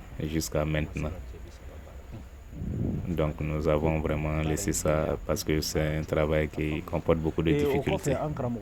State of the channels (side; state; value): both; identical; correlation 1.00